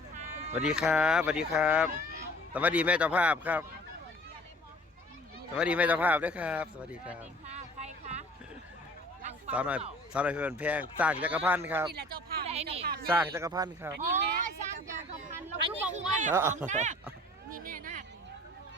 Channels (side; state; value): both; normal; correlation 0.50